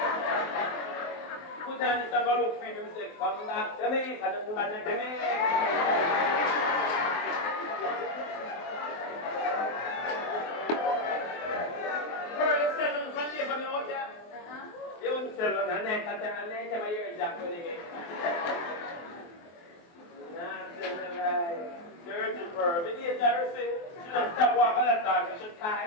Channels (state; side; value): late; right; 23 ms